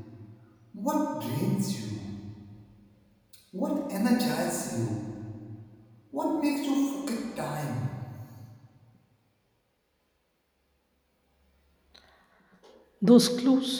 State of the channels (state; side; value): identical; both; correlation 1.00